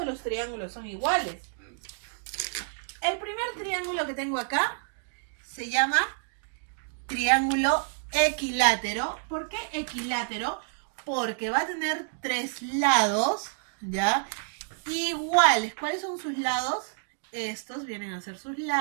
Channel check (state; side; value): silent; left; digital silence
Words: los triángulos son iguales. El primer triángulo que tengo acá se llama triángulo equilátero. ¿Por qué equilátero? Porque va a tener 3 lados, ¿ya? Iguales. ¿Cuáles son sus lados? Estos vienen a ser sus